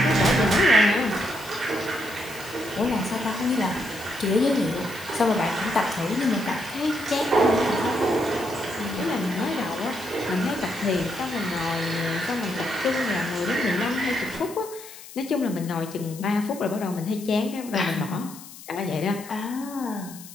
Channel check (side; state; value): left; noise; hiss, 16 dB below the sound